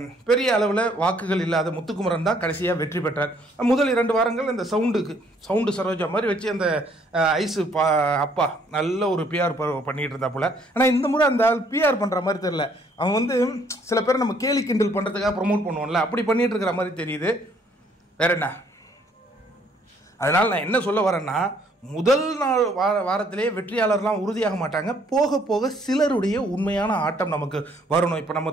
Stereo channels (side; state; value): both; normal; correlation 0.64